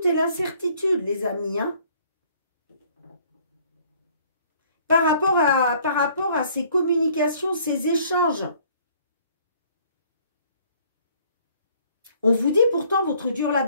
et l'incertitude, les amis. Hein. Par rapport à ces communications, ces échanges. On vous dit pourtant, votre dur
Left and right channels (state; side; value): inverted; both; correlation -0.59